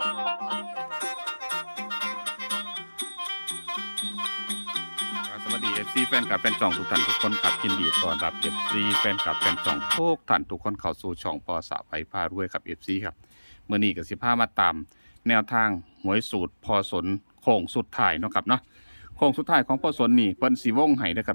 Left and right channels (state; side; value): inverted; both; correlation -1.00